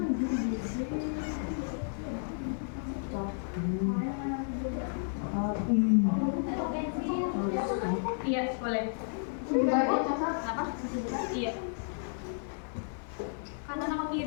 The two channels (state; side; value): silent; right; digital silence